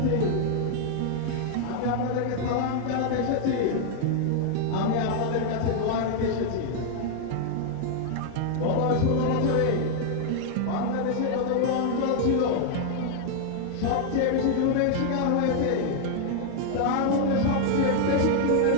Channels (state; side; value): different; both; correlation 0.00